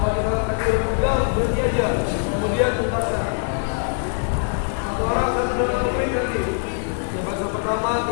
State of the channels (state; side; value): silent; right; 64 dB below the other